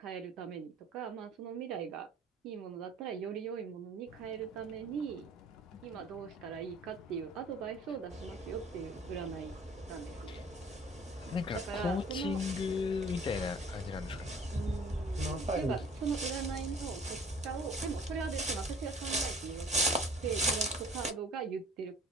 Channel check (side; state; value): both; normal; correlation 0.50